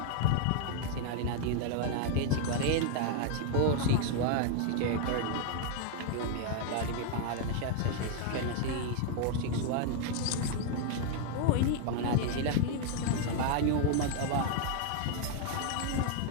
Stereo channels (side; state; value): both; different; correlation 0.00